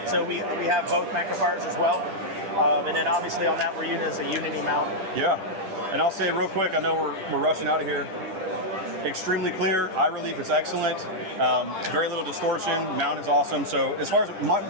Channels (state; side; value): late; left; 10 ms